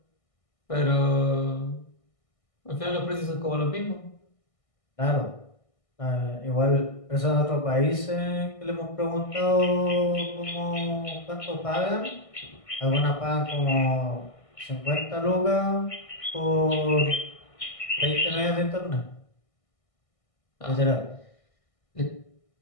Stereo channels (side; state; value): right; late; 1.6 ms